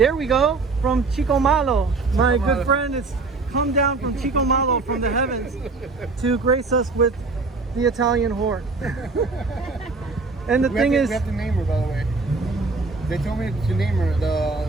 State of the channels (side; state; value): left; quieter; 3.9 dB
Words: we go, from Chico Malo. My good friend has come down from Chico Malo from the heavens to grace us with the Italian whore. And the thing is, we have to name her, by the way. They told me to name her,